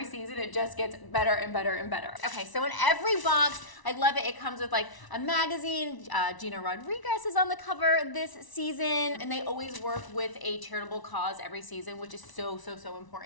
season it just gets better and better and better. Okay, so in every box, I love it. It comes with like a magazine. Gina Rodriguez is on the cover this season, and they always work with a charitable cause every season, which is so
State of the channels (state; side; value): late; right; 1.0 ms